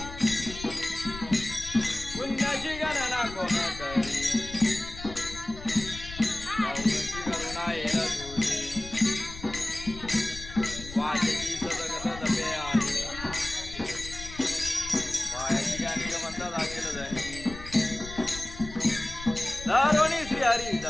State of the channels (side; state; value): left; noise; rumble, 12 dB below the sound